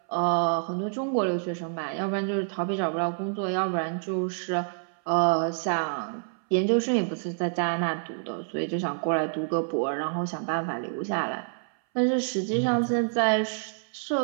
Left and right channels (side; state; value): left; silent; 60 dB below the other